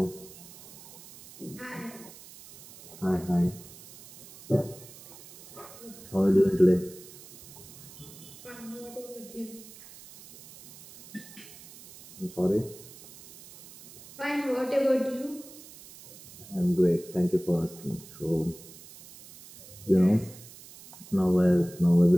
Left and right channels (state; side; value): noise; right; hiss, 19 dB below the sound